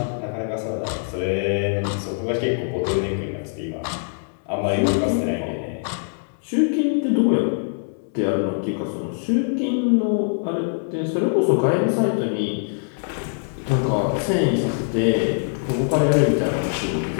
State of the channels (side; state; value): right; silent; 63 dB below the other